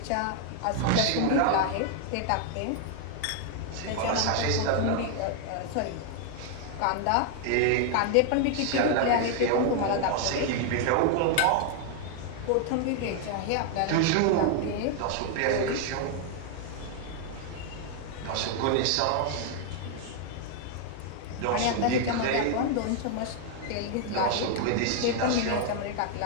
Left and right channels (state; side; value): different; both; correlation 0.00